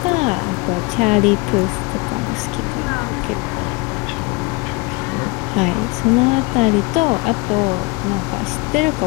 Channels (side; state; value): right; quieter; 26.6 dB